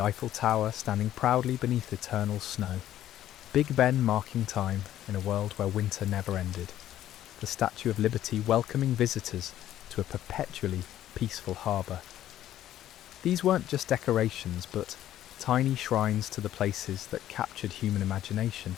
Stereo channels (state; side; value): quieter; right; 12.4 dB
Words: Tower standing proudly beneath eternal snow, Big Ben marking time in a world where winter never ended, the Statue of Liberty welcoming visitors to a perpetually peaceful harbour. These weren't just decorations, but tiny shrines to the places that captured human imagination,